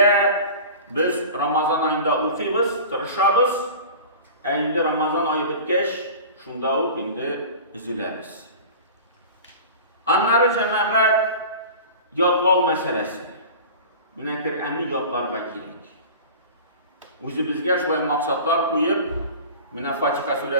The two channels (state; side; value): inverted; both; correlation -0.37